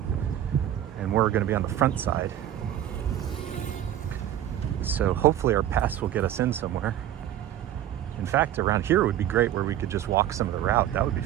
and we're going to be on the front side. So hopefully our pass will get us in somewhere. In fact, around here would be great where we could just walk some of the route. That would be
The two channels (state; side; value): quieter; left; 11.7 dB